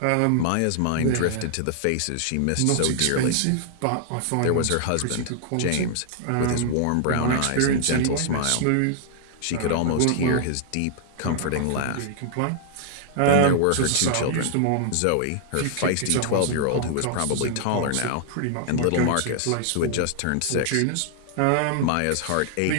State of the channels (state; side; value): different; both; correlation -0.01